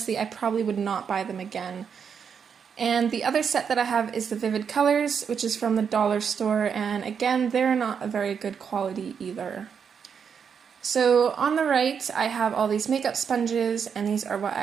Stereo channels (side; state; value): left; quieter; 6.9 dB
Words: I probably would not buy them again. And the other set that I have is the Vivid Colors, which is from the dollar store, and again, they're not a very good quality either. So on the right, I have all these makeup sponges, and these are what